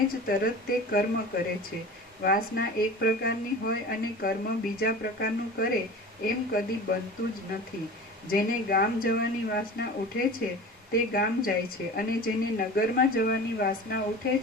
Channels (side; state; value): both; normal; correlation 0.36